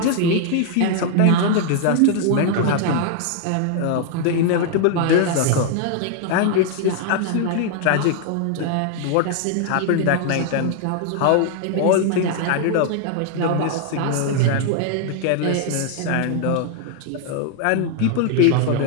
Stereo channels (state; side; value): different; both; correlation 0.00